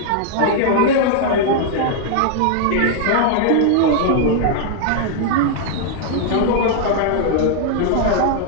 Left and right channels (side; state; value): both; different; correlation -0.01